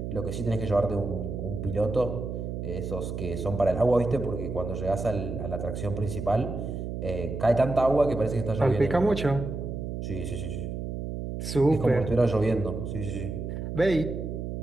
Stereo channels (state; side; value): noise; right; hum, 5 dB below the sound